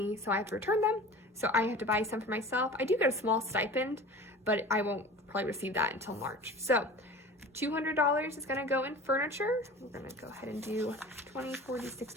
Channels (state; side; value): normal; both; correlation 0.39